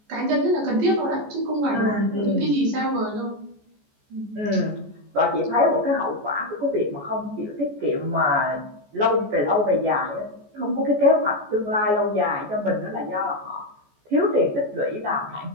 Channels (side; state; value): left; late; 14 ms